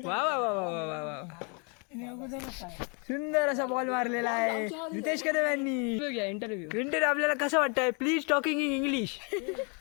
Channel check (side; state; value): right; quieter; 35.5 dB